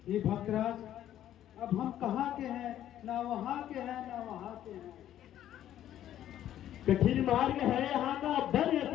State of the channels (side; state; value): right; quieter; 11.7 dB